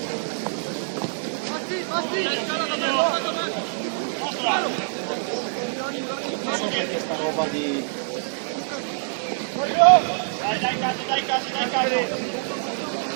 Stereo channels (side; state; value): left; silent; digital silence